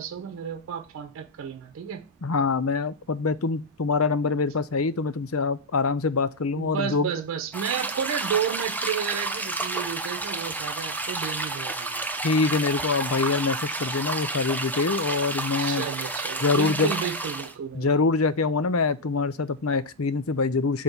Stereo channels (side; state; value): both; normal; correlation 0.01